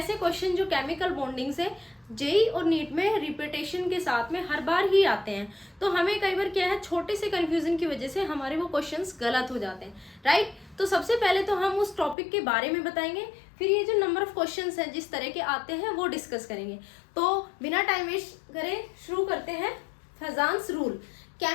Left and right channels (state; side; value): drops out; right; at 12.2 s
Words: क्वेश्चन जो केमिकल बॉन्डिंग से जेई और नीट में रिपीटेशन के साथ में हर बार ही आते हैं। तो हमें कई बार क्या है, छोटे से कंफ्यूजन की वजह से हमारे वो क्वेश्चंस गलत हो जाते हैं, राइट। तो सबसे पहले तो हम उस टॉपिक के बारे में बताएंगे, फिर ये जो नंबर ऑफ क्वेश्चंस हैं जिस तरह के आते हैं वो डिस्कस करेंगे। तो बिना टाइम वेस्ट करें शुरू करते हैं। फेजांस रूल।